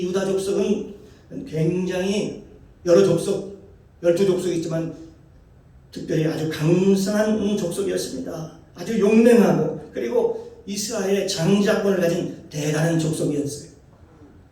유다 족속은 굉장히 여러 족속, 12족속이 있지만 특별히 아주 강성한 족속이었습니다. 아주 용맹하고 그리고 이스라엘의 장자권을 가진 대단한 족속이었어요.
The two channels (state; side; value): identical; both; correlation 1.00